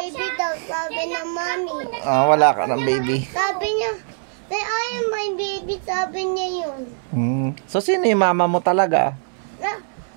daw, sabi na mami. Wala ka ng baby. Sabi niya, I am my baby, sabi niya yun. So, sino yung mama mo talaga?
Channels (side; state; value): left; silent; 64 dB below the other